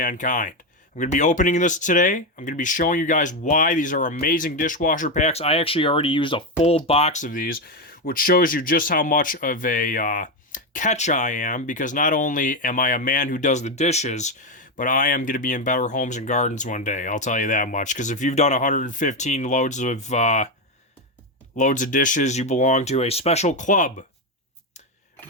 I'm going to be opening this today. I'm going to be showing you guys why these are amazing dishwasher packs. I actually already used a full box of these, which shows you just how much of a catch I am, because not only am I a man who does the dishes, but I am going to be in better homes and gardens one day, I'll tell you that much, because if you've done 115 loads of dishes, you belong to a special club.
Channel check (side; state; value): both; normal; correlation 0.09